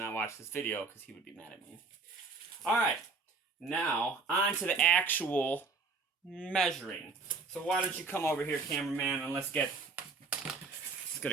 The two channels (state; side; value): quieter; left; 4.2 dB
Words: watch this video because he would be mad at me. All right, now on to the actual measuring. So why don't you come over here, cameraman, and let's get